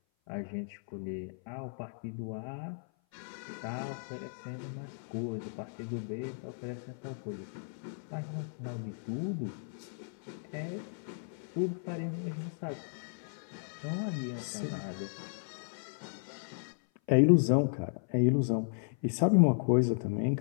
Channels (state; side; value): silent; right; 55 dB below the other